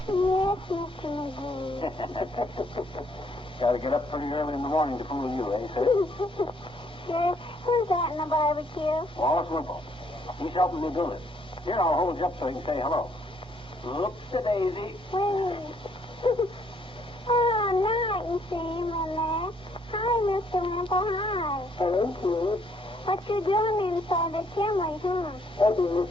yes, Mr. McGee. Got to get up pretty early in the morning to fool you, eh, sir? Sure. Who's that in the barbecue? Wallace Wimple. He's helping me build it. Here, I'll hold you up so you can say hello. Oops-a-daisy. Wait. Oh, now I can see him in there. Hi, Mr. Wimple. Hi. Hello, kid. What you doing inside the chimney, huh? Helping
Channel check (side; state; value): both; normal; correlation 0.67